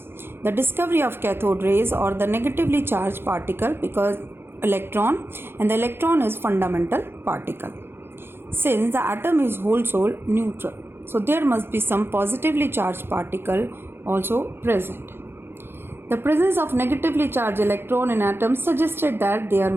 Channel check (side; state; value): left; late; 0.11 ms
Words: the discovery of cathode rays or the negatively charged particle because electron, and the electron is fundamental particle. Since the atom is whole soul neutral, so there must be some positively charged particle also present. The presence of negatively charged electron in atoms suggested that there